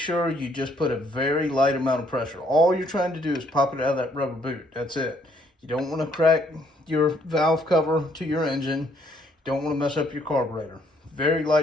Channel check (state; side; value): normal; both; correlation 0.67